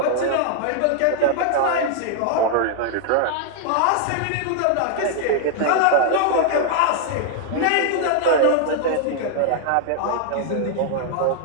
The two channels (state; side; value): different; both; correlation -0.01